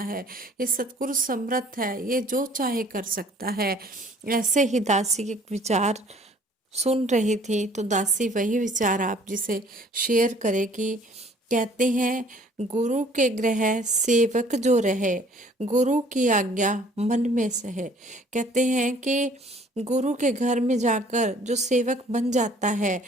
है। ये सतगुरु समर्थ है, ये जो चाहे कर सकता है। ऐसे ही दासी के विचार सुन रही थी तो दासी वही विचार आप जिसे शेयर करेगी। कहते हैं गुरु के ग्रह सेवक जो रहे, गुरु की आज्ञा मन में सहे। कहते हैं कि गुरु के घर में जाकर जो सेवक बन जाता है,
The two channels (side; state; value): both; normal; correlation 0.56